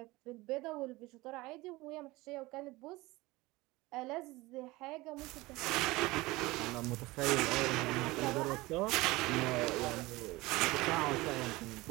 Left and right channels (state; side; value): quieter; left; 20.8 dB